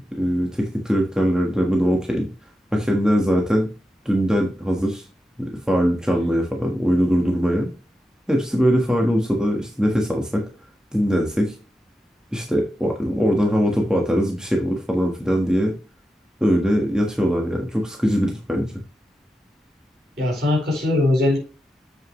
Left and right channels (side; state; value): both; normal; correlation 0.89